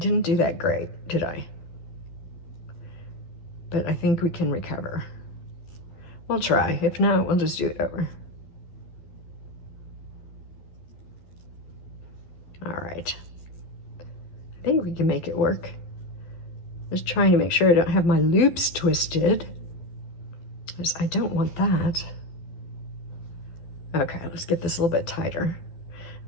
do that great, did I? But I think we can recover. We'll try. If not, we'll just do it over. All right. I think we can make it work. Just trying to make sure I don't have my loops twisted, because I don't want that. Okay, let's get this a little bit tighter.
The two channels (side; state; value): right; late; 12 ms